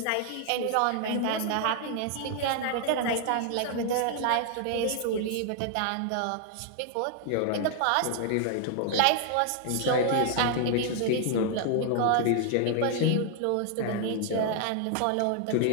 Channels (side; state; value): both; different; correlation 0.00